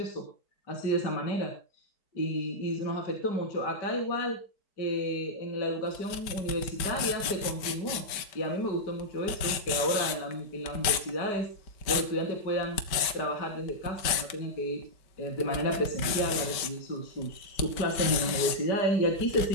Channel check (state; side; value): late; right; 5.1 ms